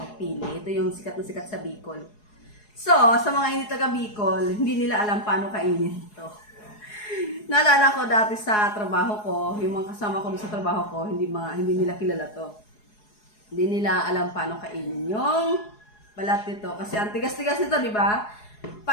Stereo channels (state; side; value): late; right; 4.8 ms